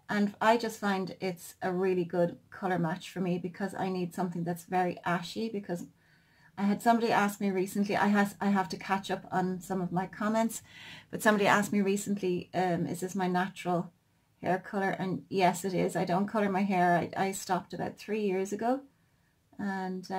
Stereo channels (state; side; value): identical; both; correlation 1.00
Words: And I just find it's a really good color match for me because I need something that's very ashy, because I had somebody ask me recently, I have to catch up on some of my comments, but somebody asked me recently, is this my natural hair color? And yes, it is. I don't color my hair. I stopped about 3 years ago, and